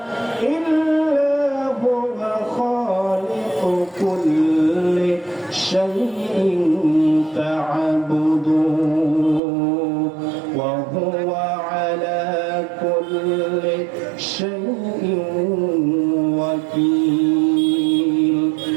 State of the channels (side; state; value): left; drops out; at 9.4 s